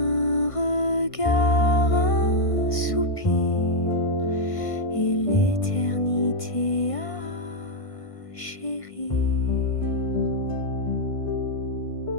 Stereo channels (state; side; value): late; right; 1.6 ms